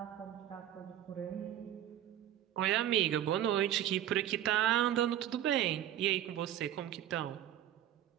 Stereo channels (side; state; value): left; quieter; 11.6 dB